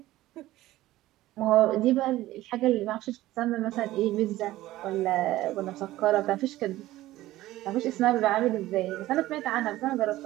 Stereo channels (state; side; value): quieter; left; 16.0 dB